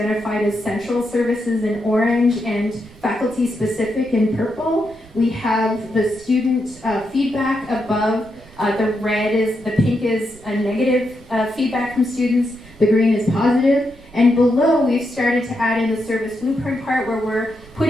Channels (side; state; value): right; noise; rumble, 23 dB below the sound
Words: as central services in orange and faculty specific in purple. We have the student feedback above. The pink is a negative feedback from students. The green is positive. And below, we've started to add in the service blueprint part where we're